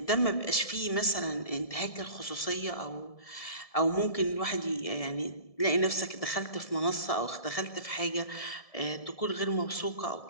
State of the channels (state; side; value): late; right; 1.7 ms